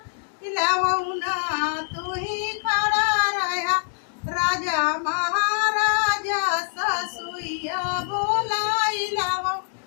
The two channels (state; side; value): silent; right; digital silence